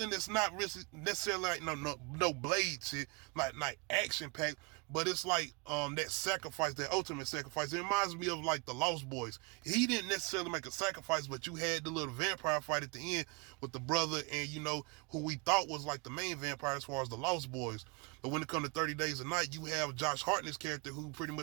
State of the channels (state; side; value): quieter; left; 29.2 dB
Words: that's not really necessarily like no blade shit, like action packed, but it's like that sacrifice, that ultimate sacrifice. It reminds me of like the Lost Boys. He didn't necessarily make a sacrifice, but you had the little vampire fight at the end with the brother and who we thought was like the main vampire as far as the Lost Boys. But when it comes to 30 Days a Night, you have Josh Hartnett's character who pretty